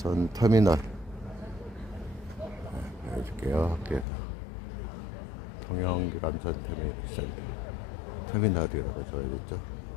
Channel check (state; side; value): drops out; right; at 4.0 s